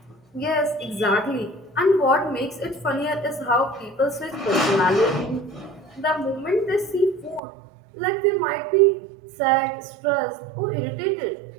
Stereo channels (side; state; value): left; drops out; at 7.4 s